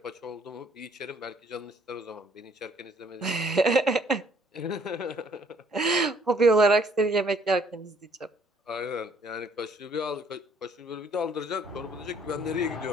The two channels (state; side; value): normal; both; correlation 0.62